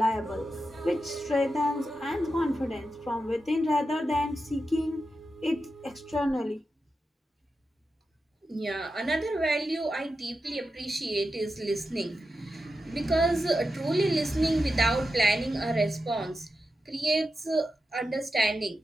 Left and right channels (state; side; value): normal; both; correlation 0.90